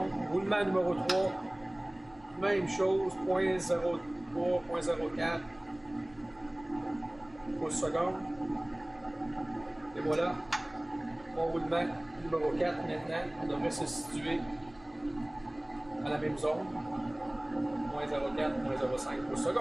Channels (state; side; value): noise; right; hum, 27 dB below the sound